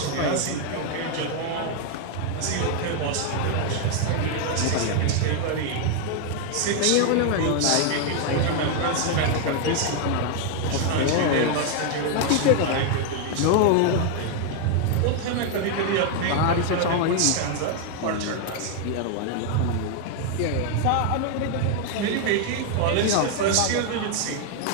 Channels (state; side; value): different; both; correlation 0.00